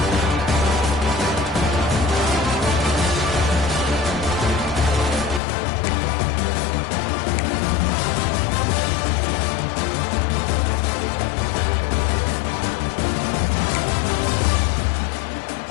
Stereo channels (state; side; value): drops out; right; at 5.4 s